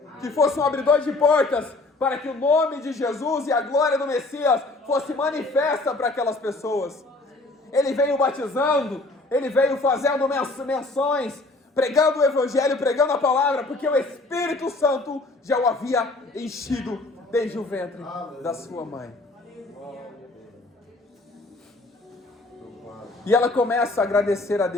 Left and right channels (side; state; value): right; quieter; 3.0 dB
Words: Que fosse um abridor de portas. Para que o nome de Jesus e a glória do Messias fosse manifesta para aquelas pessoas. Ele veio batizando, ele veio fazendo menções, pregando o Evangelho, pregando a palavra, porque o Espírito Santo já o havia enchido desde o ventre da sua mãe. E ela começa a agradecer a